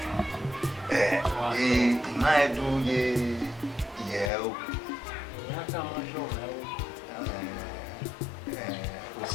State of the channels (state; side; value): drops out; right; at 4.3 s